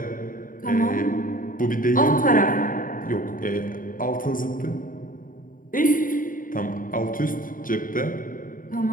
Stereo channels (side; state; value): right; late; 0.40 ms